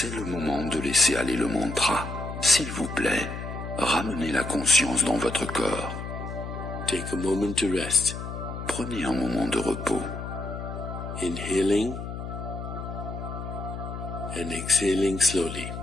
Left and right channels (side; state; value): left; noise; hum, 7 dB below the sound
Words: le moment de laisser aller le mantra. S'il vous plaît, ramenez la conscience dans votre corps. Take a moment to rest. Prenez un moment de repos. Inhaling and exhaling slowly.